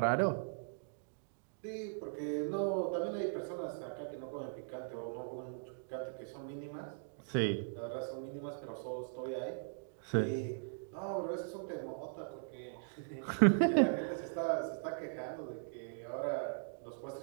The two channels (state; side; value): silent; left; digital silence